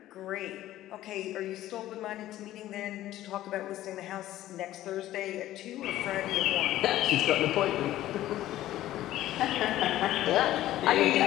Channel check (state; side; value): quieter; right; 14.2 dB